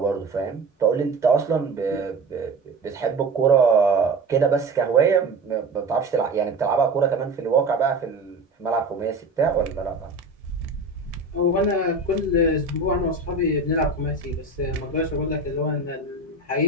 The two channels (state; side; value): quieter; left; 3.2 dB